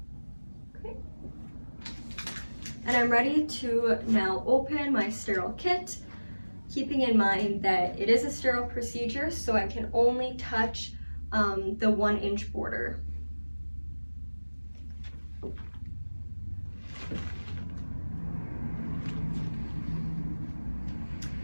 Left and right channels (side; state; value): both; inverted; correlation -1.00